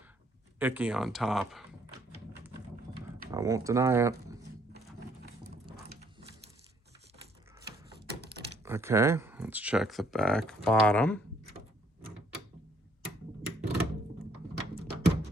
icky on top. I won't deny it. Okay, let's check the back bottom.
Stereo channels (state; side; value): normal; both; correlation 0.66